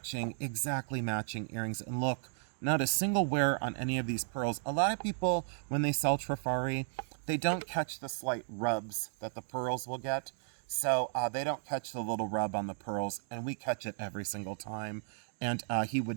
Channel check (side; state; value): left; silent; 55 dB below the other